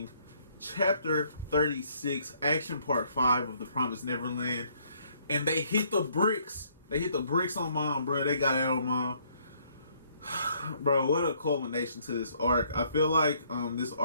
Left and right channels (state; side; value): inverted; both; correlation -0.66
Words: Chapter 36, Action Part 5 of The Promised Neverland. And they hit the bricks. They hit the bricks on Mom, bro. They got out on Mom. Bro, what a culmination to this arc. I feel like this